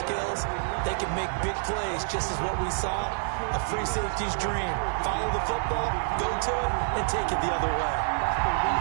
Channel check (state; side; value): silent; left; 60 dB below the other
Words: they can make big plays, just as what we saw. A free safety's dream. Follow the football, go to it, and take it the other way.